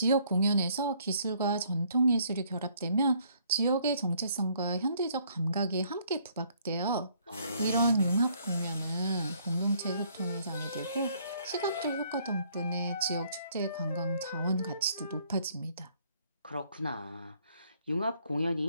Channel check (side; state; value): both; inverted; correlation -0.65